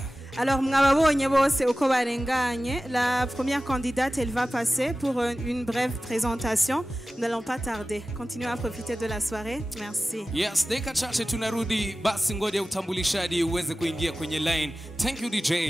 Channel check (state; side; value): normal; both; correlation 0.96